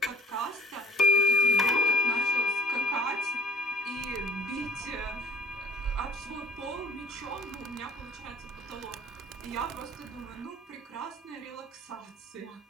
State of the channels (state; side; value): normal; both; correlation 0.42